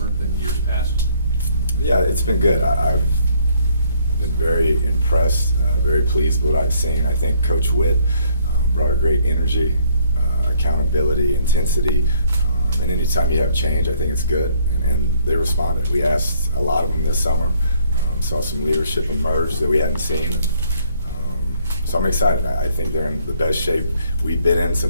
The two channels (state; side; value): inverted; both; correlation -0.65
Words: than years past? Yeah, it's been good. I've been very impressed, very pleased with what I've seen. I think Coach Witt brought a great energy, accountability, intensity, and anytime you have change, I think it's good, and they responded. We asked a lot of them this summer, saw some leadership emerge that we hadn't seen. So I'm excited. I think they're in the best shape we've been in